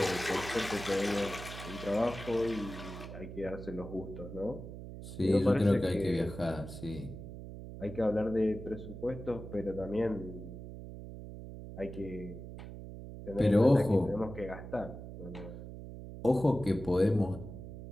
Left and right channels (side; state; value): right; noise; hum, 11 dB below the sound